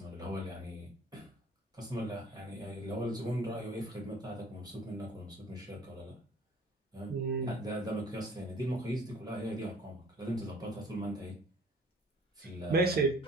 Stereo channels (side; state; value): both; normal; correlation 0.51